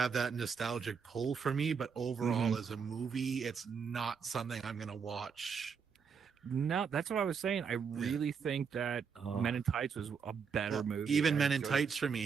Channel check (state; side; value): quieter; left; 6.2 dB